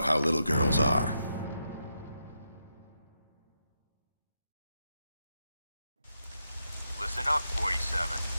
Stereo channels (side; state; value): both; inverted; correlation -0.84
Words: how little girls are. Listen up, 47.